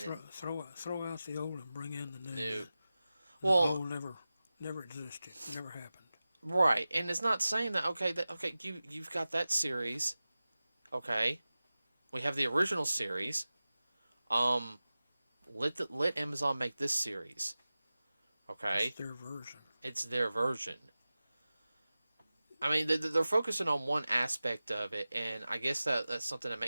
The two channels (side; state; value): both; inverted; correlation -0.96